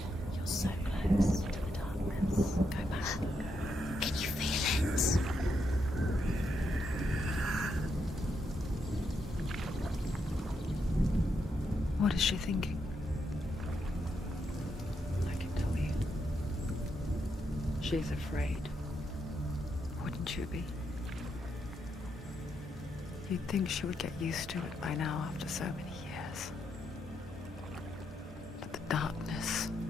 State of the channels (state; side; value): normal; both; correlation 0.81